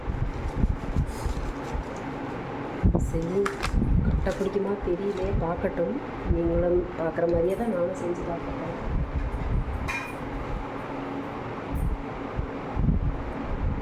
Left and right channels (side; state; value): both; identical; correlation 1.00